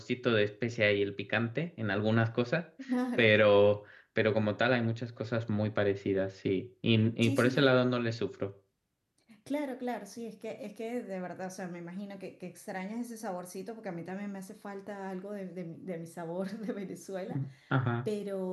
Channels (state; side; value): identical; both; correlation 1.00